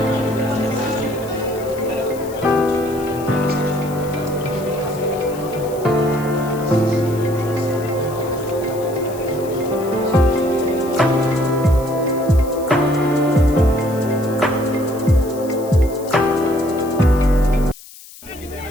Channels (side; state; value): left; noise; hiss, 19 dB below the sound